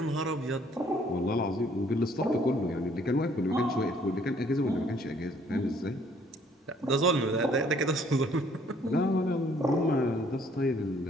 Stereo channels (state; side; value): normal; both; correlation 0.62